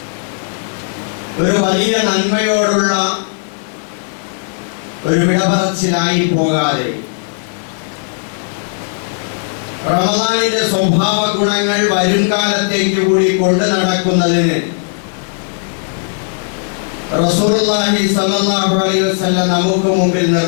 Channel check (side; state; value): right; silent; digital silence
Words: ഒരു വലിയ നന്മയോടുള്ള ഒരു വിടപറച്ചിലായി പോകാതെ റമദാനിന്റെ സ്വഭാവ ഗുണങ്ങൾ വരും കാലത്തേക്ക് കൂടി കൊണ്ടു നടക്കുന്നതിന് റസൂലുള്ളാഹി സ്വല്ലല്ലാഹു അലൈഹി വസല്ലം നമുക്ക് മുമ്പിൽ